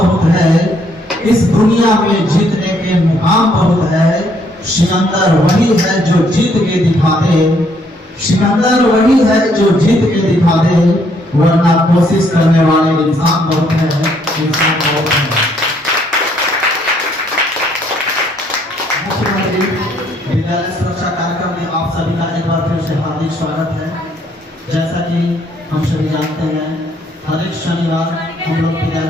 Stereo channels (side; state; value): both; normal; correlation 0.68